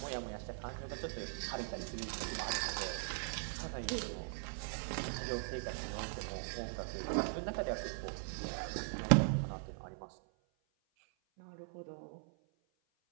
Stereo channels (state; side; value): silent; left; 51 dB below the other